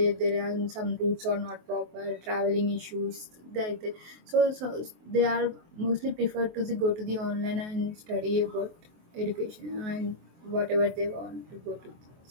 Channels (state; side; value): late; left; 23 ms